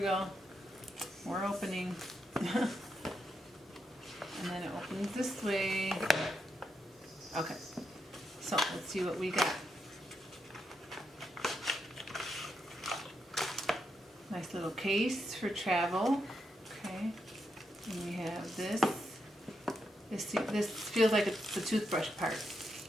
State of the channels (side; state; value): both; normal; correlation 0.82